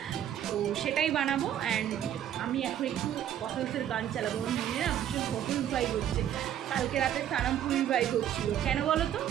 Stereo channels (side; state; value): left; quieter; 10.6 dB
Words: তো সেটাই বানাবো। অ্যান্ড আমি এখন একটু বটলসের গান চালাবো, আমার মনে না ভীষণ বটলস ভাইব হচ্ছে। কালকে রাতে সানামপুরির ভাইব হচ্ছিলো, কেন বলো তো?